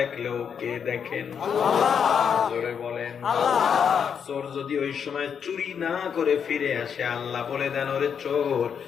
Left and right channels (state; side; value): quieter; right; 7.3 dB